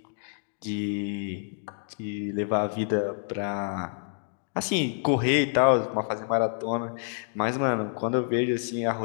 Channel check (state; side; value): silent; right; digital silence